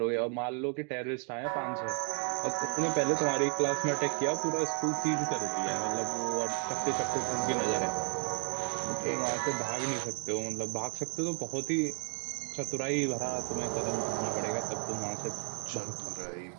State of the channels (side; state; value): left; quieter; 39.7 dB